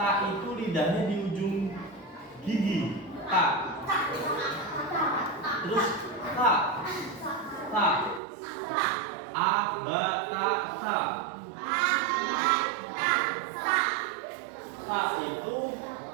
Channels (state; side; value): drops out; left; at 8.2 s